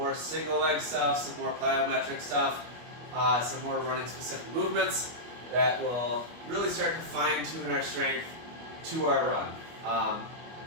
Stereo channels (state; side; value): late; left; 25 ms